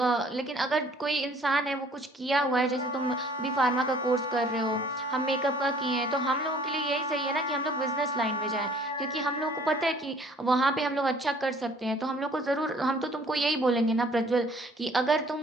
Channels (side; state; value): both; normal; correlation 0.56